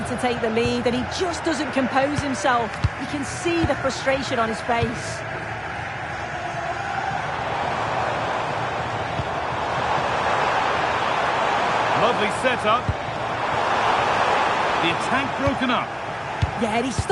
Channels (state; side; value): identical; both; correlation 1.00